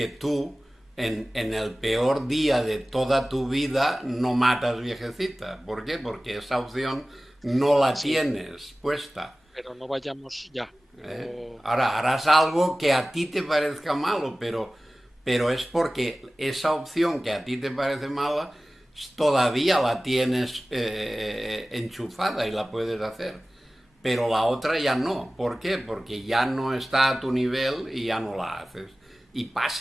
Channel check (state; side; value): normal; both; correlation 0.97